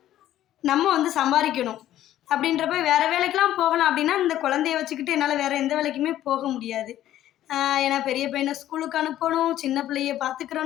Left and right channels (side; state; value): right; quieter; 12.8 dB